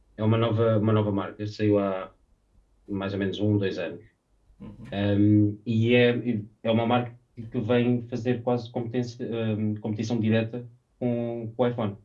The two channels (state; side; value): identical; both; correlation 1.00